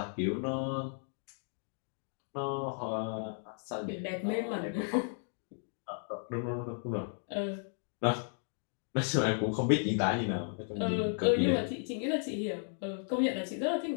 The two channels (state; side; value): silent; right; 55 dB below the other